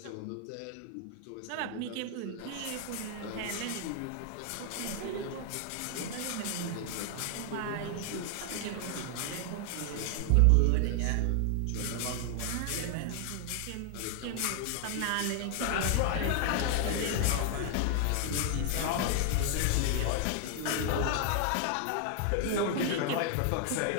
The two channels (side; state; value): both; different; correlation 0.00